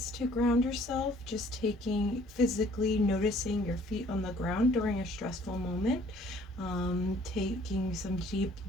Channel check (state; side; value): normal; both; correlation 0.57